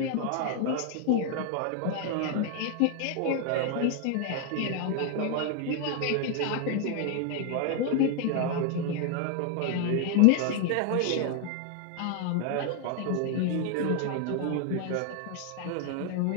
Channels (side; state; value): both; different; correlation 0.01